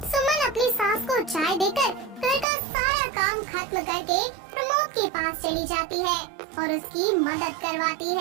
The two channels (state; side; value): drops out; left; at 2.5 s